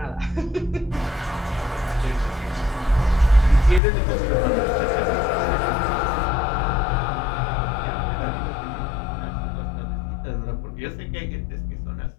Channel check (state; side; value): drops out; right; at 3.8 s